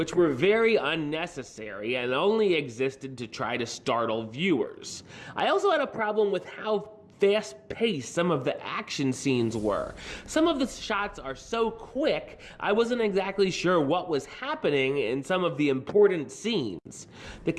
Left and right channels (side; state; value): both; identical; correlation 1.00